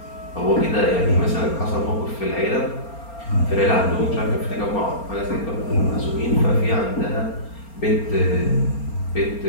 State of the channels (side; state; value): right; late; 4.3 ms